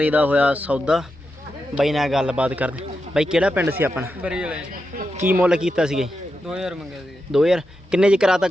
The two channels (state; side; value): normal; both; correlation 0.88